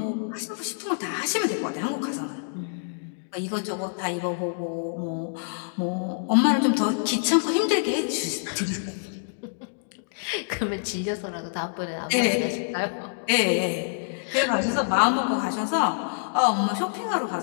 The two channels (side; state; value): right; silent; digital silence